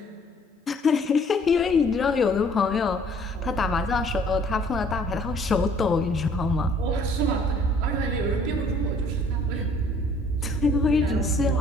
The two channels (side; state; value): both; normal; correlation 0.58